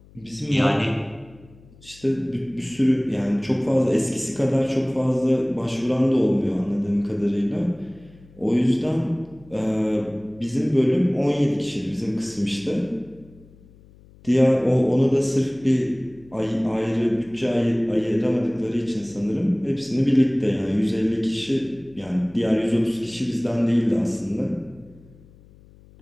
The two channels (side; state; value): left; noise; hum, 25 dB below the sound